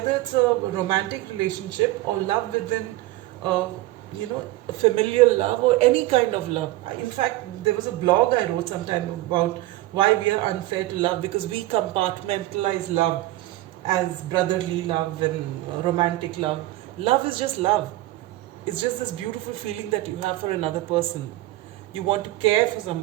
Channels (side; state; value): left; quieter; 17.3 dB